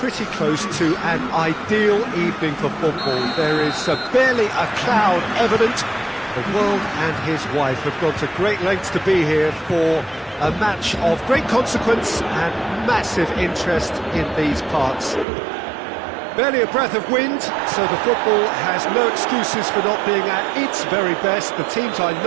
close to an ideal evening for football. There is barely a cloud evident. The world and his wife have gone to great lengths to be here for a match of great consequence and massive interest in these parts. Barely a breath of wind, so the football has no excuses for not being at its very best. The teams I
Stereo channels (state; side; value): drops out; left; at 15.2 s